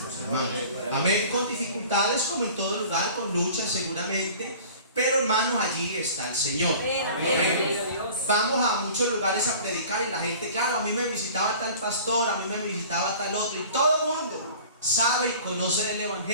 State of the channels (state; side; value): inverted; both; correlation -0.44